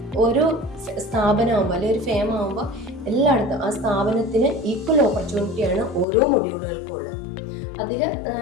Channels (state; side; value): drops out; right; at 6.1 s